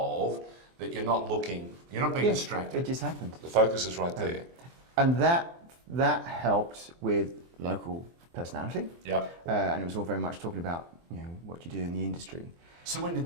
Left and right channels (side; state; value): left; late; 23 ms